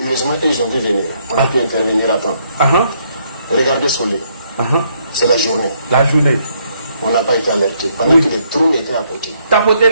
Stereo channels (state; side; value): inverted; both; correlation -0.71